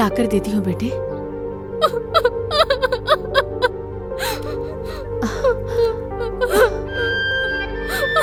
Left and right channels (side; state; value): both; identical; correlation 1.00